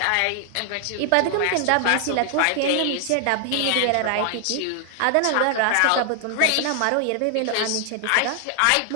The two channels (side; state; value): both; different; correlation 0.00